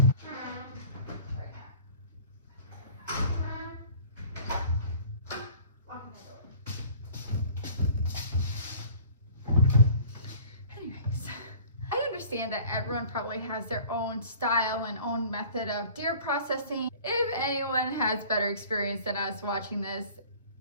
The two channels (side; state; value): both; inverted; correlation -0.47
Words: Anyways, I understand that everyone probably has their own style and own method of deer processing. If anyone has better experience than us watching this,